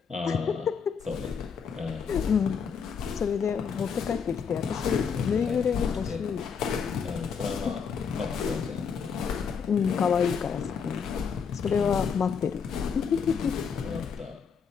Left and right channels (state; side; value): quieter; right; 6.4 dB